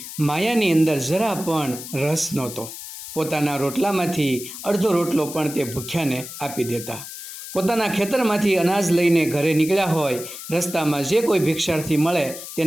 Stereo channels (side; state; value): left; noise; hiss, 11 dB below the sound